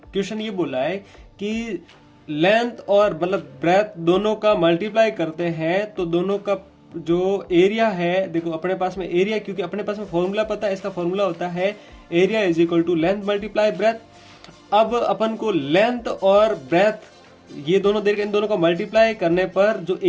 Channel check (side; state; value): both; identical; correlation 1.00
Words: ये बोला है कि लेंथ और मतलब ब्रेथ दोनों का मल्टीप्लाई करते हैं तो दोनों का जो एरिया है, देखो अपने पास में एरिया, क्योंकि अपने पास में फॉर्मूला पता है, इसका फॉर्मूला होता है area is equal to length multiply breadth. अब अपन को लेंथ और ब्रेथ ये दोनों देर इन दोनों का मल्टीप्लाई करने पर जो